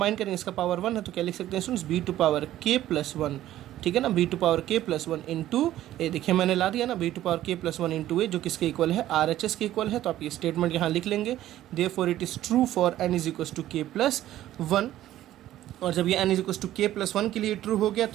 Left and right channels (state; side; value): quieter; left; 13.5 dB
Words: करेंगे, इसका पावर वन है, तो क्या लिख सकते हैं students, B to power K plus one, ठीक है ना, B to power K plus one into A, देखिए मैंने ला दिया ना, B to power K plus one into A, जो किसके इक्वल है, आर एच एस के इक्वल है। तो आप ये स्टेटमेंट यहाँ लिख लेंगे, therefore it is true for N is equal to K plus one, और जब ये n is equal to K plus one के लिए ट्रू हो गया